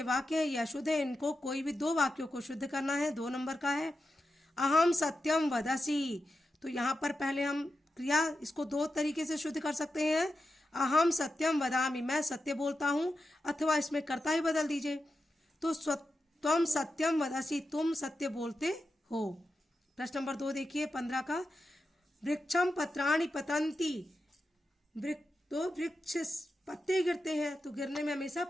वाक्य है ये अशुद्ध है, इनको कोई भी 2 वाक्यों को शुद्ध करना है। 2 नंबर का है। अहम सत्यम वदसी, तो यहाँ पर पहले हम क्रिया इसको 2 तरीके से शुद्ध कर सकते हैं। अहम सत्यम वदामि, मैं सत्य बोलता हूँ, अथवा इसमें कर्ता ही बदल दीजिए तो त्वम सत्यम वदसी, तुम सत्य बोलते हो। प्रश्न नंबर 2 देखिए 15 का, वृक्षम पत्राणि पतंती। तो वृक्ष पत्ते गिरते हैं तो गिरने में हमेशा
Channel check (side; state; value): both; normal; correlation 0.89